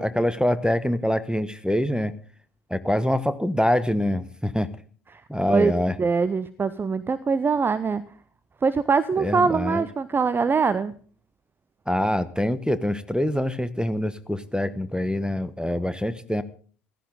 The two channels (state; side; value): normal; both; correlation 0.88